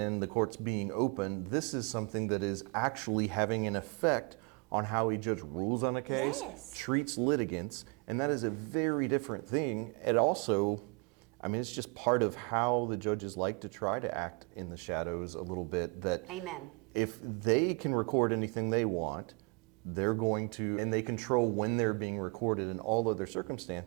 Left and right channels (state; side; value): quieter; left; 31.9 dB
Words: the courts being open. This is something that is actually having an effect on how a judge rules on a case, treats litigants, and that is a very different thing. It also, I mean, it's just part of how the judges like to try to act in the shadows a little bit. That Amen. If they can record anything they want, they're going to, and they control when they're being recorded in all other